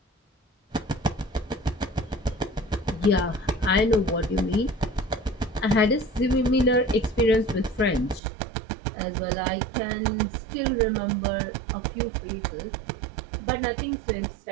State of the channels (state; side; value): drops out; left; at 8.2 s